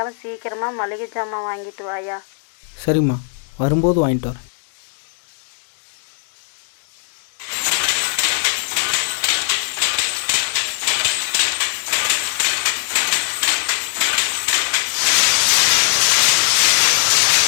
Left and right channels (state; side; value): silent; right; 66 dB below the other